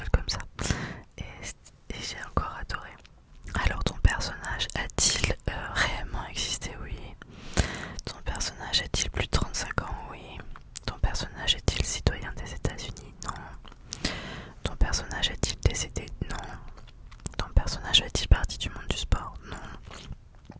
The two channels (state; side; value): identical; both; correlation 1.00